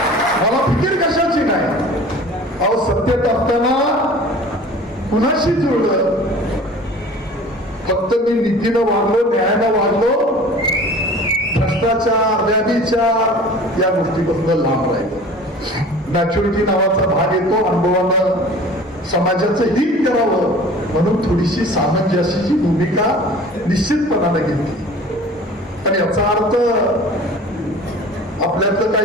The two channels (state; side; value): normal; both; correlation 0.43